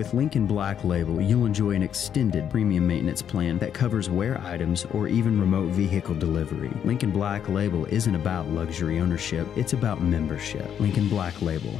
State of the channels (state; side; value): quieter; right; 8.8 dB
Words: Lincoln Black Label, you'll enjoy an extended premium maintenance plan that covers wear items or even remote vehicle delivery. Lincoln Black Label isn't about luxury ownership, it's about membership. Lincoln Black Label,